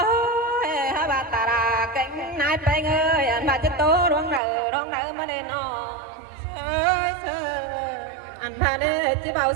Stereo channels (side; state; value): left; drops out; at 4.4 s